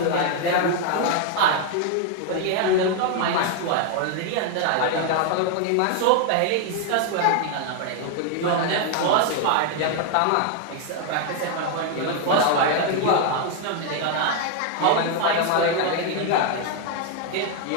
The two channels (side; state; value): both; different; correlation 0.00